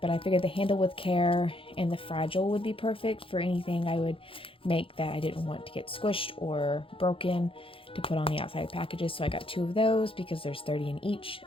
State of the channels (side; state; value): right; late; 0.26 ms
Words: but I figured the handle with care and the fragile would be perfect for anything I would make that I didn't want to get squished or broken to put on the outside packages. So I got two of those because there's 30 in each.